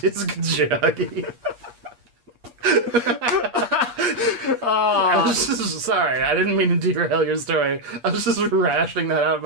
disc jockey. I was just sorry. I didn't mean to derail your story. I was just rationing that out in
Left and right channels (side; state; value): left; late; 8.4 ms